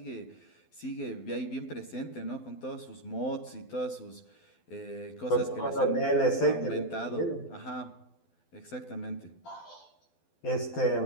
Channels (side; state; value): right; late; 12 ms